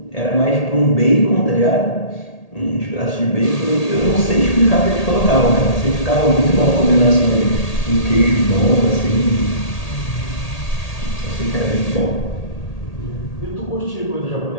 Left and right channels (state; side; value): late; right; 1.8 ms